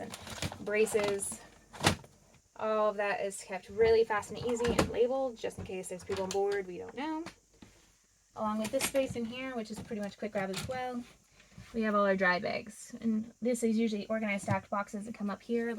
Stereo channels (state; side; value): identical; both; correlation 1.00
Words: braces. All of that is kept really fast and easy and labeled, just in case there's people on board we don't know. Along with this space in here, which is pretty much quick grab as well. We have all our dry bags, and this is usually organized stacked boxes that come up here,